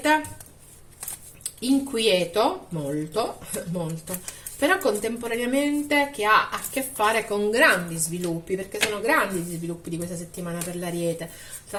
inquieto, molto, però contemporaneamente che ha a che fare con grandi sviluppi, perché sono grandi gli sviluppi di questa settimana per l'Ariete,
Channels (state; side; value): identical; both; correlation 1.00